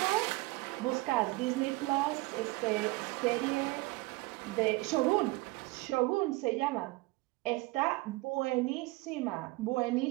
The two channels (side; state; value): left; quieter; 22.7 dB